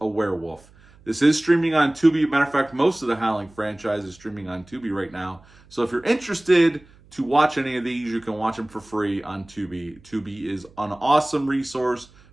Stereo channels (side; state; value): right; noise; hum, 27 dB below the sound